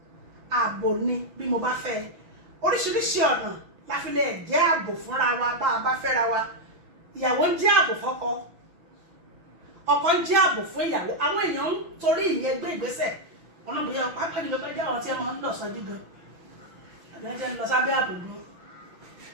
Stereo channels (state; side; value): late; left; 6.0 ms